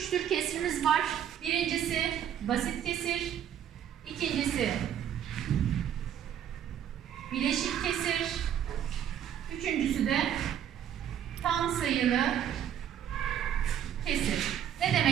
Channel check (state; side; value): quieter; left; 9.8 dB